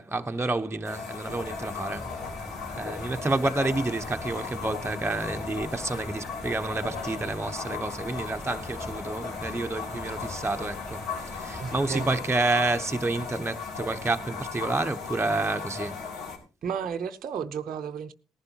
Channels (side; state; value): both; normal; correlation 0.72